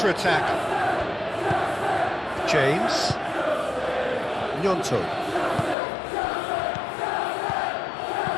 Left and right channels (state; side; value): drops out; right; at 5.8 s